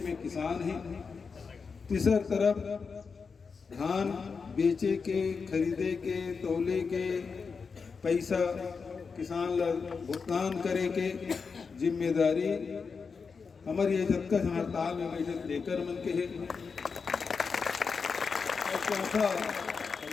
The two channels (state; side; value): quieter; right; 5.2 dB